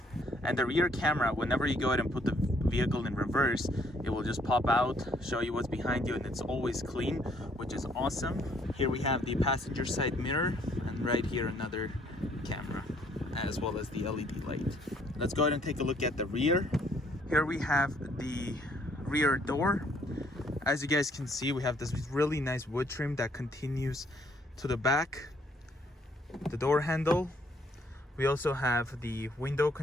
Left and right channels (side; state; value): both; normal; correlation 0.65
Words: and the rear camera, whenever you go ahead and put the vehicle in reverse, it will just pop out, show you what's behind you, and it's always clean, which is awesome. Here we have the passenger side mirror, and right here another camera, as well as the LED light. Let's go ahead and take a look at the rear. Here we have the rear door. As you guys can see, we have this really nice wood trim that continues to the back. The door handle. We also have the window